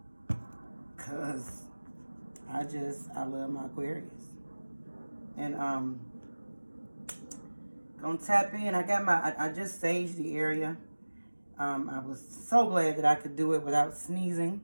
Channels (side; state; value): both; inverted; correlation -1.00